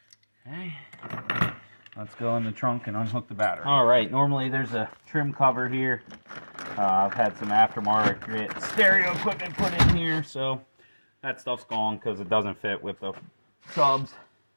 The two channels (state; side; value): inverted; both; correlation -1.00